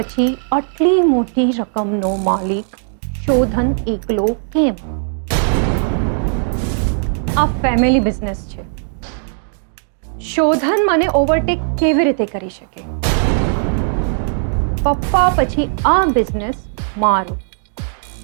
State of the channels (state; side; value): silent; left; 67 dB below the other